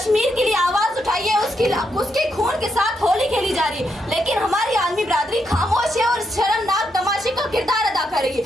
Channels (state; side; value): normal; both; correlation 0.80